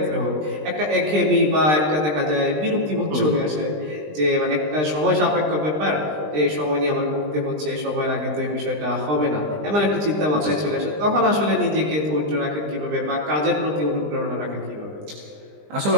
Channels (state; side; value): late; left; 20 ms